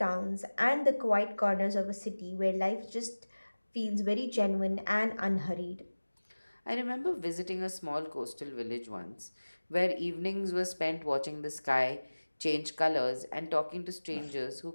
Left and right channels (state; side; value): inverted; both; correlation -1.00